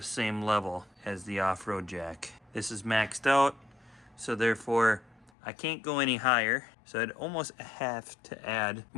same level as the off-road jack. This is maxed out, so therefore I can't go any higher. So I'd almost have to add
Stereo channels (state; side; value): drops out; right; at 5.3 s